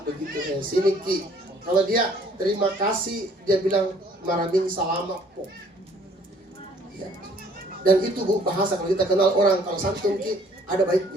begitu sini ki. Kalau dia terima kasih dia bilang maraming salama po. Ya. Dan itu Bu bahasa kalau kita kenal orang kalau santun ki ada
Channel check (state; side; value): normal; both; correlation 0.59